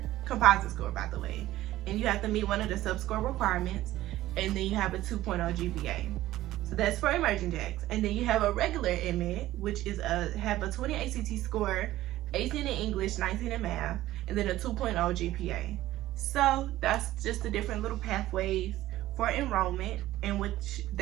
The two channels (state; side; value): quieter; left; 15.3 dB